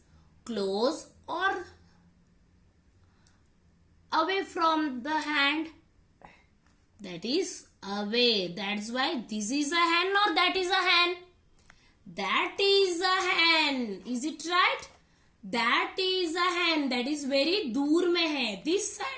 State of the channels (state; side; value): identical; both; correlation 1.00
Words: close or away from the hand? That is away. That's why this is a hen or that is a hen? That is a hen. Is it right? That is a hen. That is very दूर में है. This